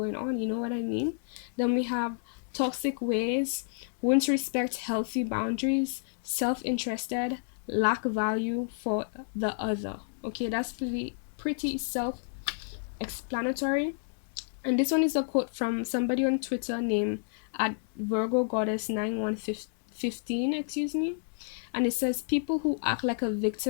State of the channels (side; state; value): right; silent; 58 dB below the other